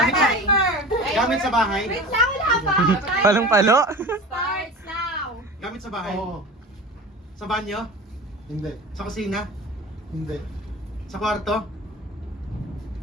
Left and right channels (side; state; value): both; normal; correlation 0.35